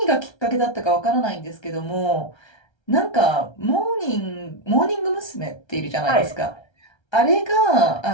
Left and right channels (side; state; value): right; late; 1.3 ms